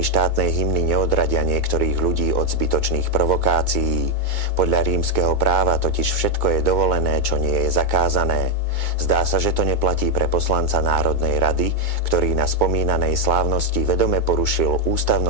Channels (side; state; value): right; late; 2.2 ms